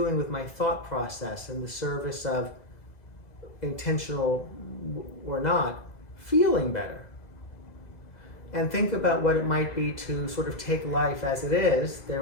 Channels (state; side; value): late; right; 2.0 ms